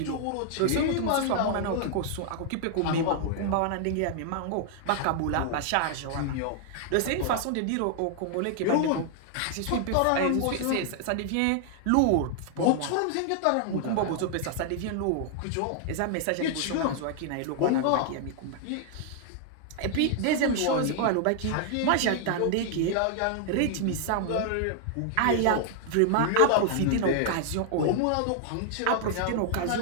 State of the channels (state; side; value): different; both; correlation 0.00